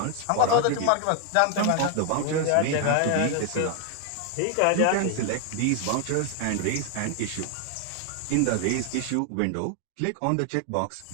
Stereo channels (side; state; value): both; different; correlation 0.00